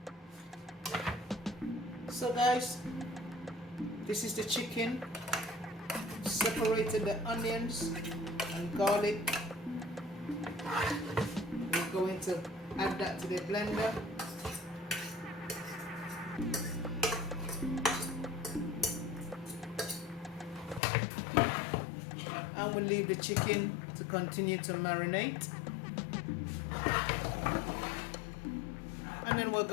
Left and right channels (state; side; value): drops out; right; at 20.8 s